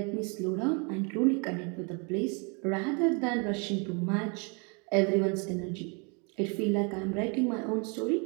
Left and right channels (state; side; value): quieter; left; 33.6 dB